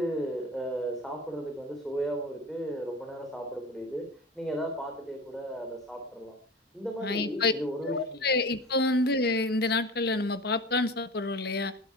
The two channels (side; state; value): both; normal; correlation 0.34